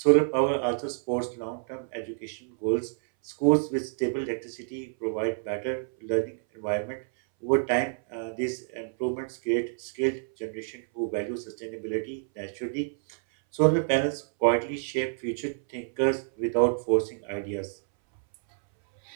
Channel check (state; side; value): silent; left; 59 dB below the other